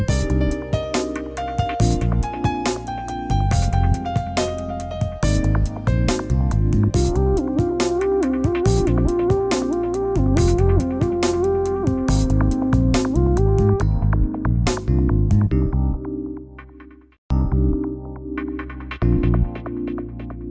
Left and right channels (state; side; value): identical; both; correlation 1.00